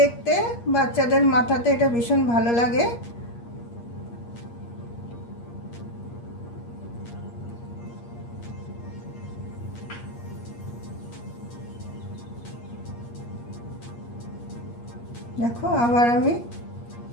বাচ্চাদের মাথাতে এটা ভীষণ ভালো লাগে। দেখো আবার আমি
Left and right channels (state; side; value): late; right; 8.5 ms